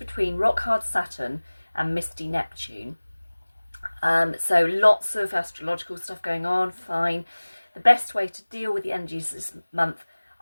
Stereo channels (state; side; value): inverted; both; correlation -1.00